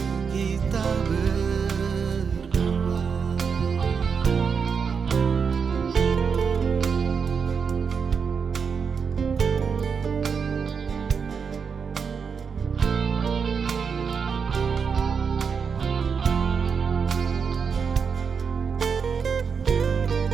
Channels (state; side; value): quieter; left; 6.1 dB